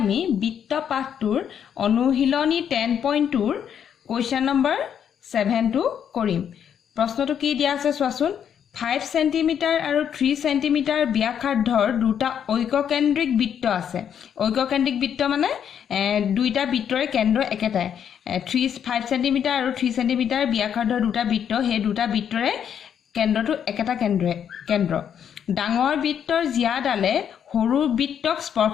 বৃত্ত পাঠটোৰ অনুশীলনী 10.2 কোৱেশ্চন নম্বৰ 7 টো কৰিম প্ৰশ্নটো কি দিয়া আছে চোৱাচোন 5 সেন্টিমিটাৰ আৰু 3 সেন্টিমিটাৰ ব্যাসাৰ্ধৰ দুটা ঐককেন্দ্ৰিক বৃত্ত আছে ঐককেন্দ্ৰিক বৃত্ত মানে দুইটা বৃত্তৰে কেন্দ্ৰ একেটাই 5 সেন্টিমিটাৰ আৰু 3 সেন্টিমিটাৰ ব্যাসাৰ্ধৰ দুটা বৃত্ত হে দুটা বৃত্তৰে কেন্দ্ৰটো একেটা কেন্দ্ৰ ডাঙৰ বৃত্তৰ জিয়াডালে সৰু বৃত্তক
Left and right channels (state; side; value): quieter; right; 8.6 dB